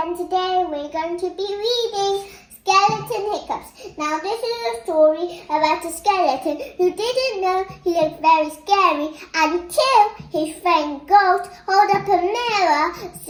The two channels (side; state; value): both; identical; correlation 1.00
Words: today we're going to be reading Skeleton Hiccups. Now this is a story about a skeleton who didn't know he looked very scary until his friend Ghost held up a mirror